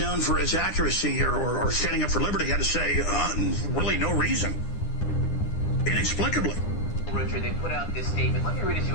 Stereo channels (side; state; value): right; late; 9.9 ms